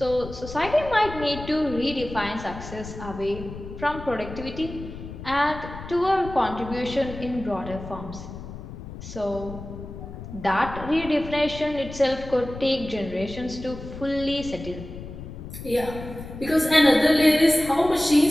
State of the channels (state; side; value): noise; left; rumble, 11 dB below the sound